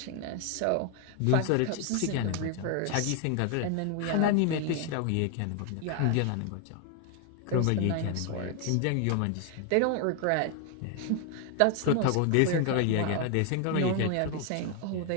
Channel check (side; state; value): both; different; correlation 0.01